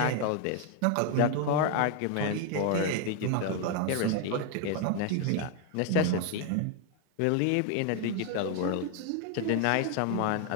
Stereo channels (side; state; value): both; different; correlation 0.01